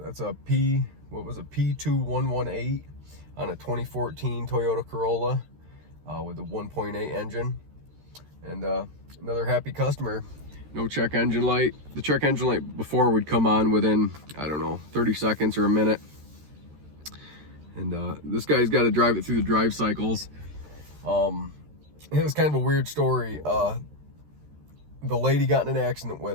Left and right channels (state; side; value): late; left; 13 ms